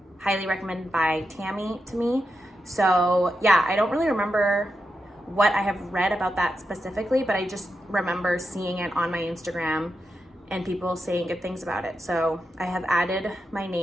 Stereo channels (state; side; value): normal; both; correlation 0.87